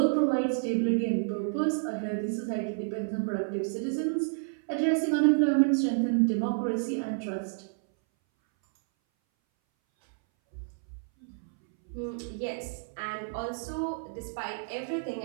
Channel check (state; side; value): silent; left; 58 dB below the other